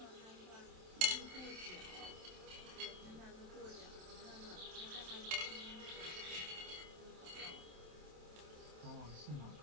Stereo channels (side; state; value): left; late; 27 ms